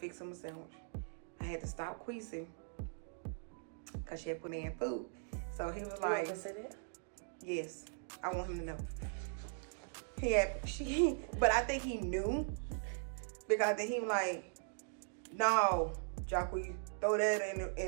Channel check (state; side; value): silent; left; digital silence